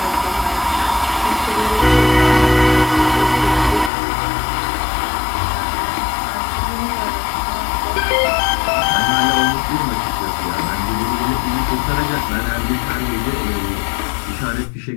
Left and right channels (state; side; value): drops out; right; at 3.9 s